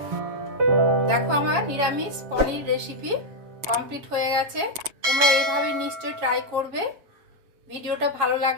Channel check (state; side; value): late; left; 7.3 ms